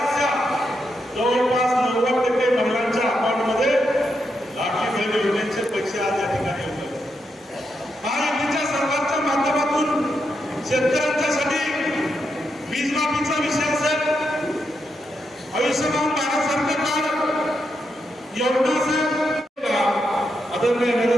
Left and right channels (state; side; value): normal; both; correlation 0.83